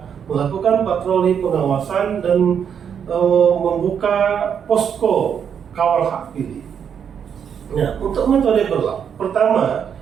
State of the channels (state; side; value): quieter; left; 7.8 dB